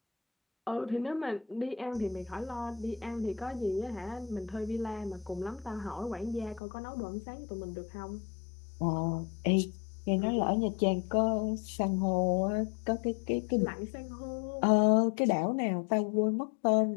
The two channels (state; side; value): drops out; right; at 6.6 s